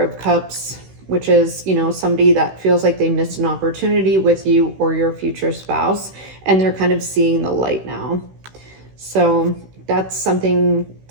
Cups, which is, you know, somebody that feels like they missed an opportunity with you or your future spouse, and they're kind of seeing the light now. So that's something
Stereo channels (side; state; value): left; late; 16 ms